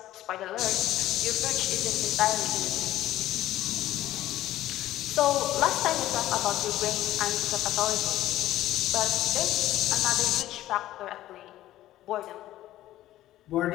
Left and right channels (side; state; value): right; quieter; 14.4 dB